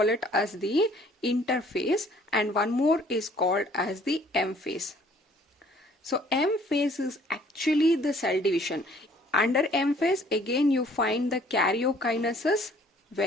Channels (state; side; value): normal; both; correlation 0.58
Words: it as the interphase and one more is called as the M phase. So M phase is actually the cell division. Under M phase again you find the karyokinesis,